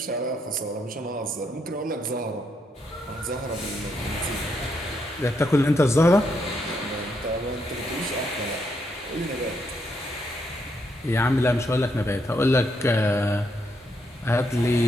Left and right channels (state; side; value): normal; both; correlation 0.77